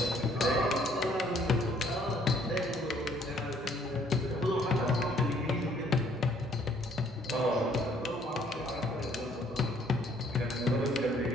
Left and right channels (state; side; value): normal; both; correlation 0.62